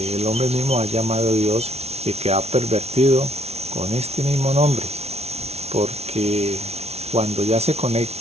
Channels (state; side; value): late; left; 0.31 ms